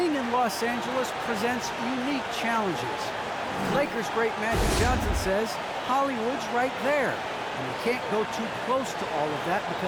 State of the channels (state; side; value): identical; both; correlation 1.00